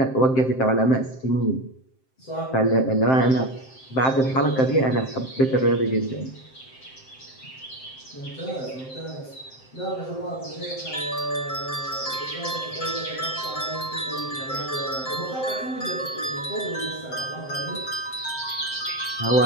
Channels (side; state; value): right; late; 7.6 ms